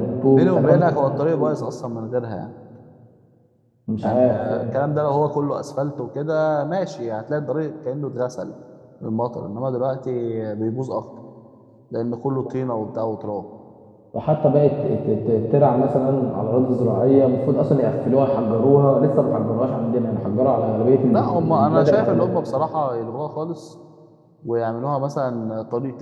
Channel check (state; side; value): identical; both; correlation 1.00